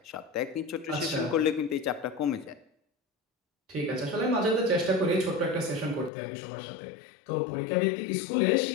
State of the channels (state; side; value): drops out; right; at 6.1 s